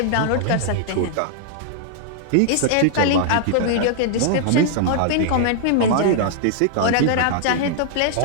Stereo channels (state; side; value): different; both; correlation -0.01